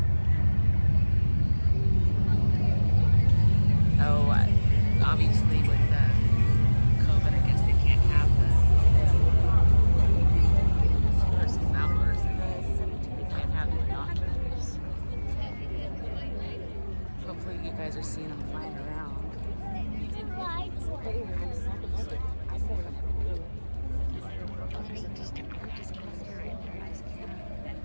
Oh, obviously with the COVID, I guess they can't have the versus outdoors. They can't have the binoculars. Hopefully you guys are seeing them flying around. There's a distant gorgeous cluster right there. Nice camera.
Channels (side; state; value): both; inverted; correlation -1.00